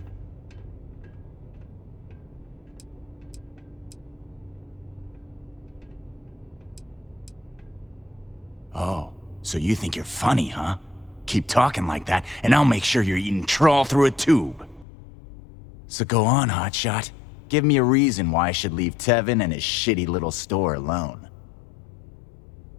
Oh, so you think you're funny, huh? Keep talking like that, and I'll make sure you're eating trawl through a tube. So go on, hotshot. Give me a reason why I should leave Tevin and his shitty little store alone.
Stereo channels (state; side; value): drops out; right; at 14.9 s